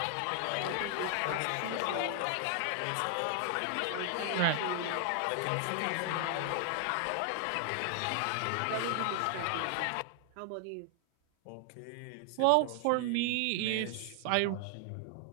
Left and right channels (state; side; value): different; both; correlation 0.00